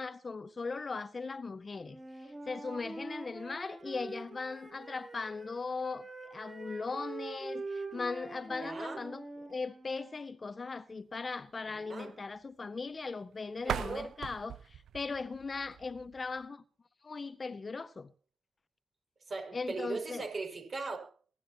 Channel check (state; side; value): normal; both; correlation 0.89